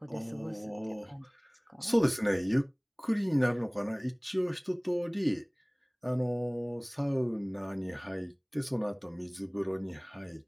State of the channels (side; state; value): both; identical; correlation 1.00